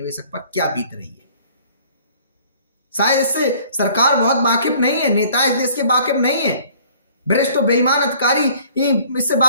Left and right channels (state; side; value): inverted; both; correlation -0.54